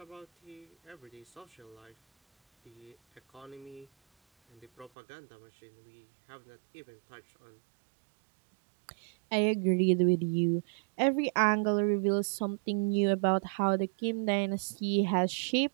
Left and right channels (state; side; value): drops out; left; at 4.9 s